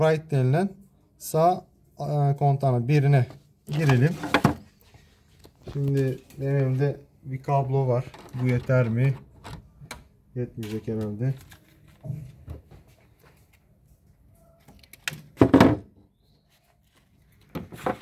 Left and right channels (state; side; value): identical; both; correlation 1.00